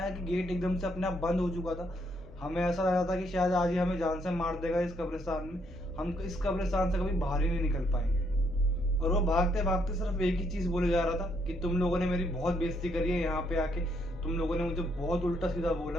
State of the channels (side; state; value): both; normal; correlation 0.73